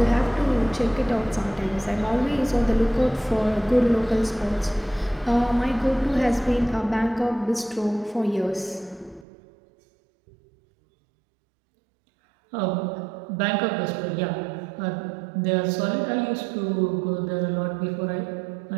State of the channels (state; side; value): drops out; left; at 9.2 s